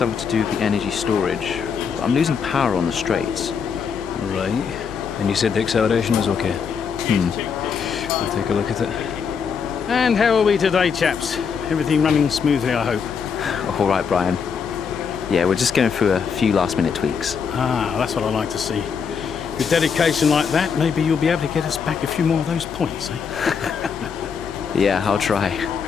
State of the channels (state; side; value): quieter; right; 6.3 dB